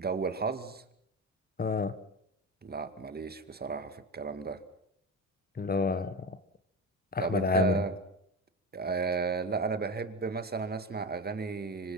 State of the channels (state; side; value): normal; both; correlation 0.22